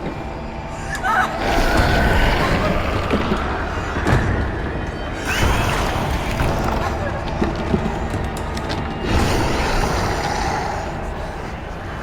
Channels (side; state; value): both; identical; correlation 1.00